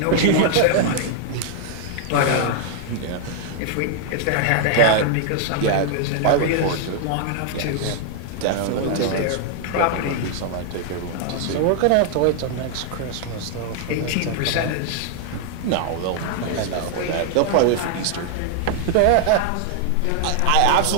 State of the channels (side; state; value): both; different; correlation -0.01